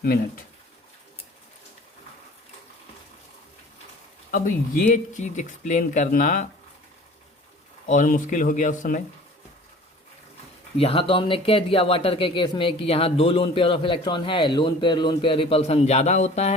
मिनट। अब ये चीज़ एक्सप्लेन करना और मुश्किल हो गया उस समय। यहाँ तो हमने कह दिया वाटर के केस में कि यहाँ 2 लोन पेयर ऑफ इलेक्ट्रॉन है, लोन पेयर रिपल्सन ज़्यादा होता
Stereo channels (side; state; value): both; normal; correlation 0.46